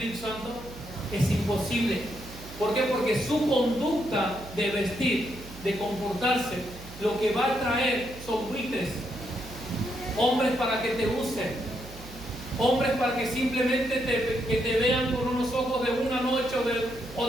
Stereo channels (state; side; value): noise; right; hum, 15 dB below the sound